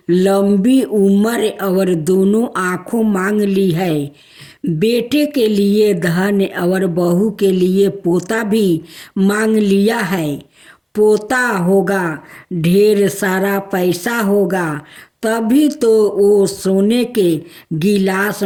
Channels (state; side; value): identical; both; correlation 1.00